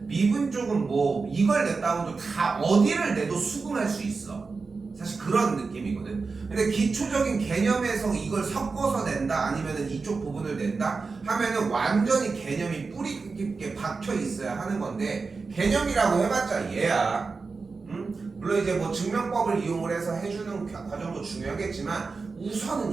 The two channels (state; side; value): quieter; left; 4.4 dB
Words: 미분 쪽은 뭐, 이걸 냈다고 해도 다 어디를 내도 수긍할 수 있어. 사실 그런 느낌이거든. 근데 기초적인 개념에서 이걸 섞어서 낸다 아니면은 이쪽 부분을 낸다 하면은 완전히 개념이 뿌리 깊게 박혀 있어야 하는 건데, 개념이라고 해봤자 얘야. 물론 이제 뭐 증명법을 이용을 해서 해주는 과정도 중요하겠지만